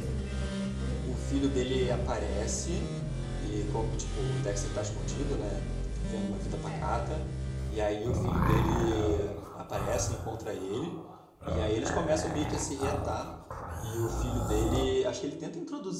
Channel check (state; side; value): identical; both; correlation 1.00